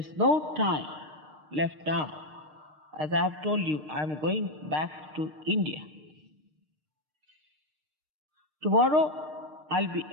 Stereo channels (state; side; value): late; left; 6.5 ms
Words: no time left now. As I have told you, I am going back to India. Tomorrow I'll be